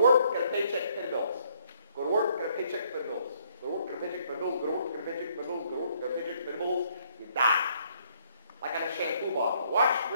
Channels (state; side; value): inverted; both; correlation -0.67